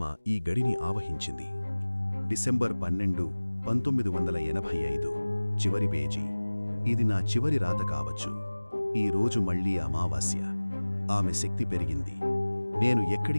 ఈ గడిని ఆవహించింది. డిసెంబర్ 12, 1985. చివరి పేజీ. ఇది నా చివరి రాత కావచ్చు. ఈ రోజు మళ్లీ అమావాస్య. ఆమె శక్తి పెరిగింది. నేను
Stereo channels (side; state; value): both; inverted; correlation -1.00